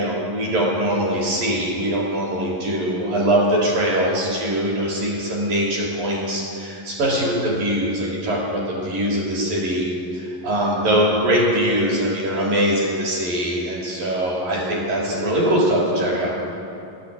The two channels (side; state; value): left; late; 11 ms